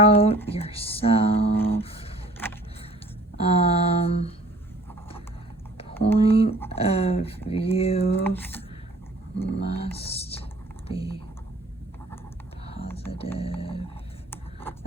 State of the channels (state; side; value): normal; both; correlation 0.52